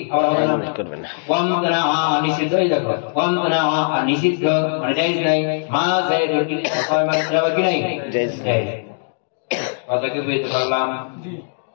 আবার হবে না করবে না ওয়ামতনা নিষিদ্ধ এই দেখো ওয়ামতনা নিষিদ্ধ মানে জায়েজ নাই মা যাইদুন ইল্লা কায়মান যাবে কি নাই জায়েজ জায়েজ কথা কি বুঝতে পারলাম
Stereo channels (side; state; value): right; silent; digital silence